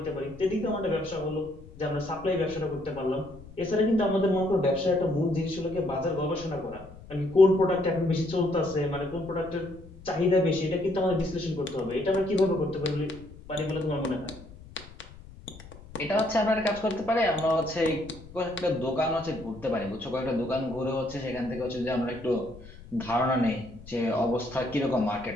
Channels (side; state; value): left; noise; rumble, 18 dB below the sound